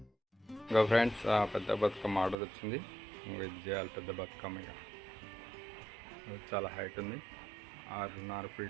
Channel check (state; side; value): drops out; left; at 2.4 s